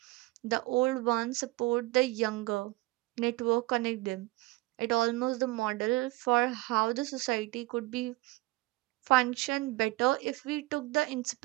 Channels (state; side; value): quieter; left; 21.1 dB